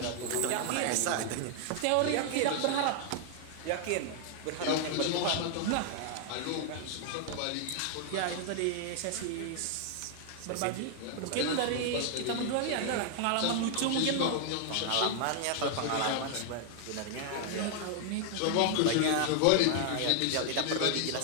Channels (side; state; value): both; different; correlation 0.00